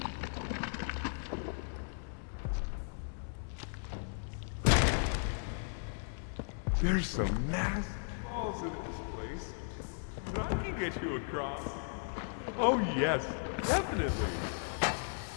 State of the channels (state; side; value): silent; right; digital silence